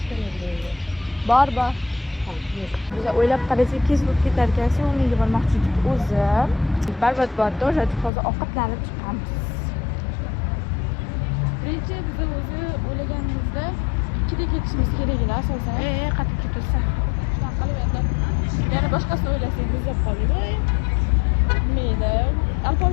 Bor. Biz o'ylab qarasak, kes bo'lib ketar ekan, sevimliga bormoqchi edik o'zi. Barbat borda o'sha hozir ovqatlanib chiqamiz. Birinchi biz o'zi o'ylaganimizda 2da ketishimiz keraklar asosan. Qattiq ketursa. Shunaqa qilib endi yana boshqasini o'ylasak muzlab qoldik. Nima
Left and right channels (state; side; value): drops out; right; at 8.1 s